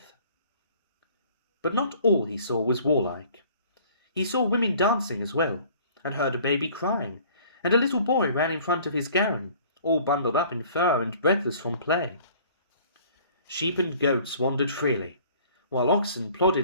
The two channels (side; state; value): both; inverted; correlation -0.52